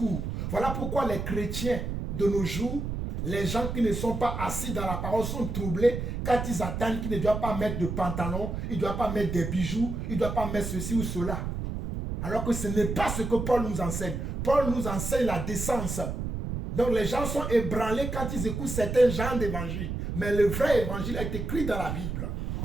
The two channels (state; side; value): noise; right; rumble, 4 dB below the sound